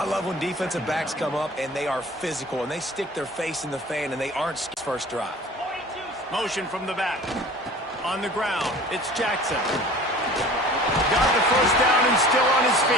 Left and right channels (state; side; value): normal; both; correlation 0.44